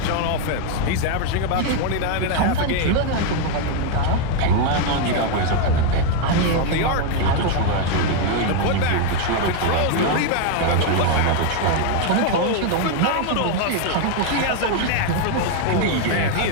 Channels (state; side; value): different; both; correlation 0.01